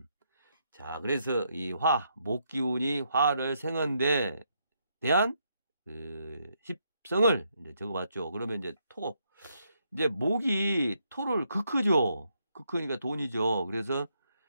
자, 그래서 이 목 기운이 화를 생한데 대한 십성을 이제 적어봤죠. 그러면 이제 이제 목이 토를 극크죠. 극크니까 돈이죠. 그래서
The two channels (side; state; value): both; inverted; correlation -0.76